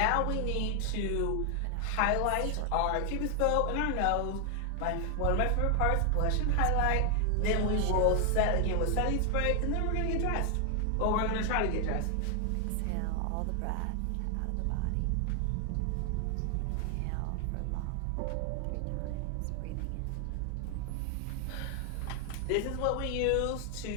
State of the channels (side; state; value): both; different; correlation 0.00